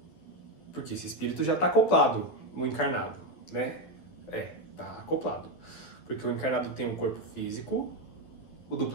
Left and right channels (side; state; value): right; late; 12 ms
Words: esse espírito já está acoplado no encarnado, né? Está acoplado. Porque o encarnado tem um corpo físico, o